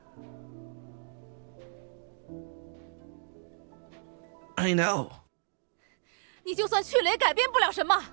I know. 你就算去了也改变不了什么，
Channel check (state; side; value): silent; left; digital silence